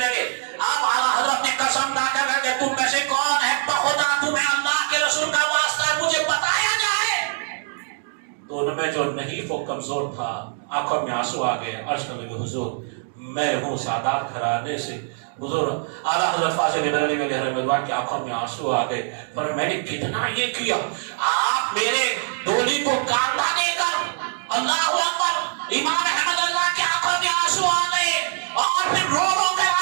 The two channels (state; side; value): silent; left; digital silence